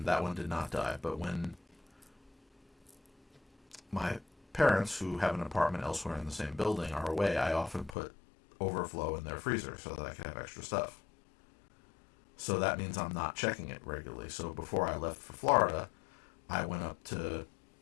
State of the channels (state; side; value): drops out; right; at 8.0 s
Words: that one did not die. But when my parents, who have an apartment elsewhere in the same building, are away, I often put overflow in their freezer so that I can have extra stuff. So that means I'm not checking it regularly. So before I left for Florida, I went up to,